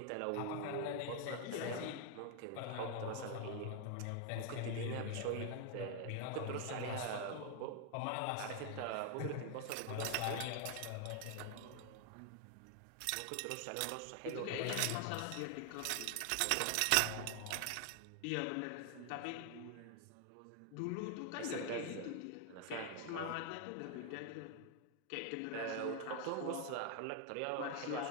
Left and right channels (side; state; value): both; different; correlation 0.00